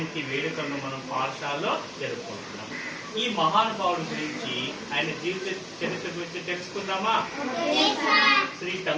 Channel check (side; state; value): both; identical; correlation 1.00